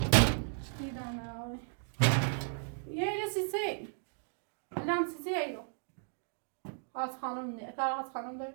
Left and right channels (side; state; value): left; silent; 54 dB below the other